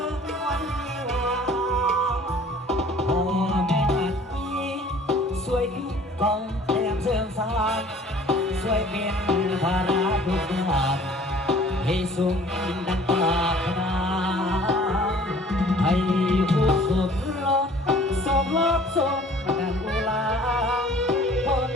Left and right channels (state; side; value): normal; both; correlation 0.51